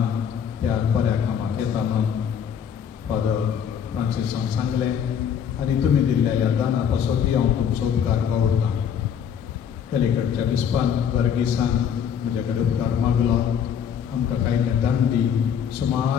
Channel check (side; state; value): right; quieter; 8.1 dB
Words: त्या बऱ्या कामाक येता म्हणून फादर फ्रांसिसान सांगलें आनी तुमी दिल्ल्या ह्या दाना पासोती हांव तुमचो उपकार वावुरतां. पलीकडच्या विस्पान वर्गिसान म्हजे कडेन उपकार मागलो. आमकां कांयले दांडी